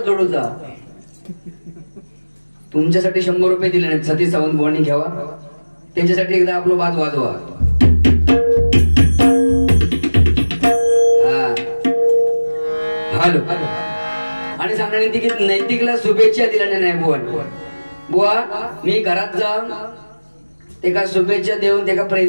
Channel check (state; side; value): inverted; both; correlation -1.00